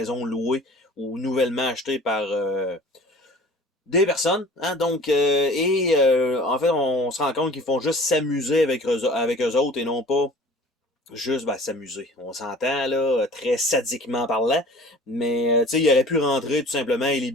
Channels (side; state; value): both; normal; correlation 0.46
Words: louée ou nouvellement achetée par des personnes, hein, donc, en fait, on se rend compte qu'ils font juste s'amuser avec eux autres et non pas juste s'amuser. On s'entend, là, très sadiquement parlant, mais, tu sais, il aurait pu rentrer tout simplement et les